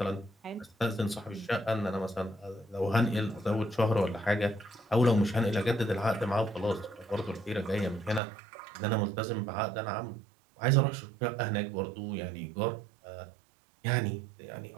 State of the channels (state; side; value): drops out; left; at 8.2 s